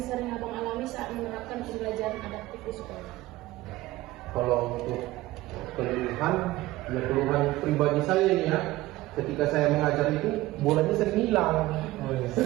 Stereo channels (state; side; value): quieter; left; 17.7 dB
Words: sering Abang alami saat menerapkan pembelajaran adaptif di sekolah? Kalau untuk keluhan pribadi saya ini ya. Ketika saya mengajar itu bolanya sering hilang,